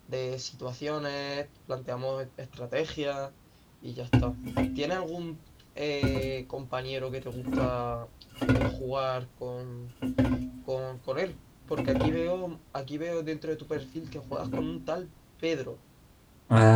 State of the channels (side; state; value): both; identical; correlation 1.00